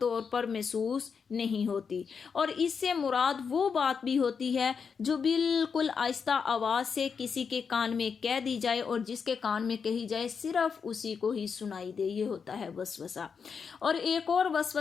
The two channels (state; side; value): quieter; right; 6.0 dB